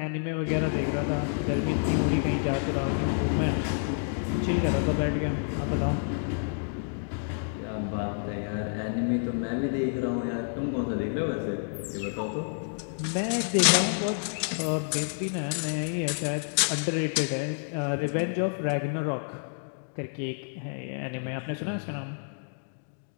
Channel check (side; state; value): right; silent; digital silence